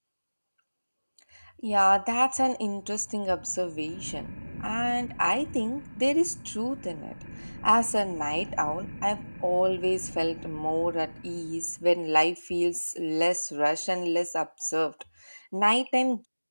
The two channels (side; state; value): both; inverted; correlation -1.00